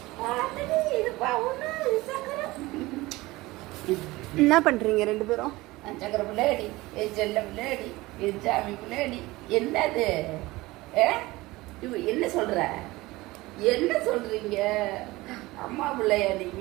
இதுப்பா ஒண்ணு சக்கரம். என்ன பண்றீங்க ரெண்டு பேரும்? சக்கர பிள்ளைடி செல்ல பிள்ளைடி சாமி பிள்ளைடி என்னது? என்ன சொல்ற? என்ன சொல்றீங்க? அம்மா பிள்ளையா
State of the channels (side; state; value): left; quieter; 20.1 dB